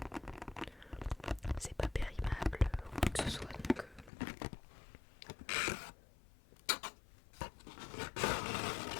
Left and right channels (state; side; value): drops out; right; at 4.1 s